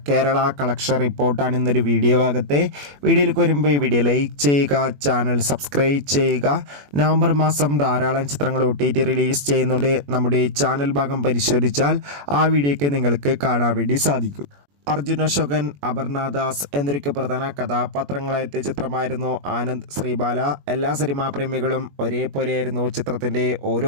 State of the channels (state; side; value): late; left; 21 ms